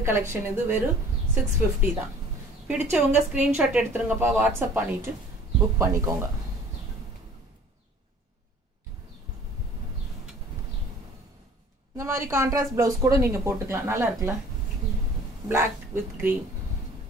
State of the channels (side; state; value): both; normal; correlation 0.50